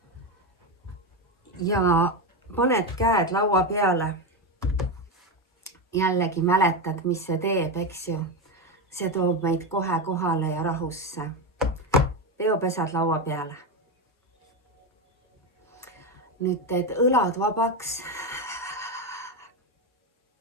ja paned käed laua peale. Jällegi mäletad, mis see teeb, eks ju. See toob meid kohe kohale ja rahusse. Peopesad laua peale. Nüüd teed õlad vabaks.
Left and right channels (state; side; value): normal; both; correlation 0.13